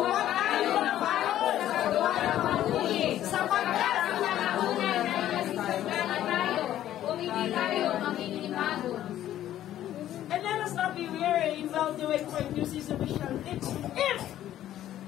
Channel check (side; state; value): right; quieter; 12.4 dB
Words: tayo magpahon sa gawa ng mabuti. Sapagkat ang nakaunay na ilasisagana tayo. Kung hindi tayo makikipagod. And let us not be weary in well-doing, for in due season we shall live.